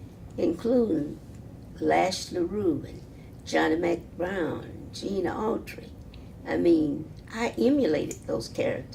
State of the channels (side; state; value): both; identical; correlation 1.00